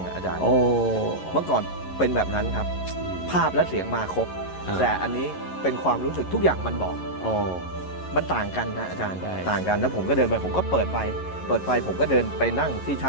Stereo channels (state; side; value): late; right; 11 ms